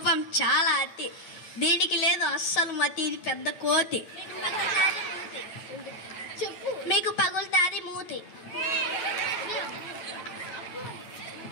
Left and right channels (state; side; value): late; right; 9.3 ms